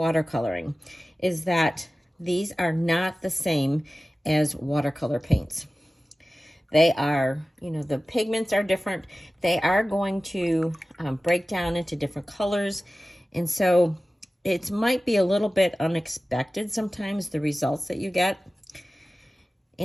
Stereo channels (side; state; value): both; normal; correlation 0.96